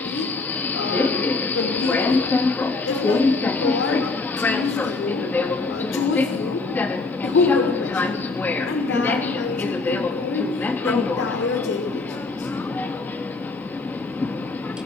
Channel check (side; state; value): right; quieter; 3.6 dB